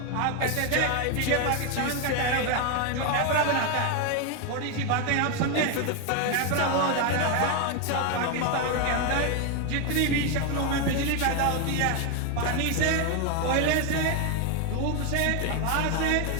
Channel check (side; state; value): both; different; correlation 0.01